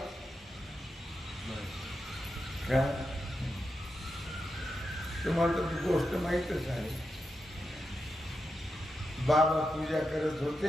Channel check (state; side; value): normal; both; correlation 0.87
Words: तुम्हाला तर ती गोष्ट माहीतच आहे. बाबा पूजा करत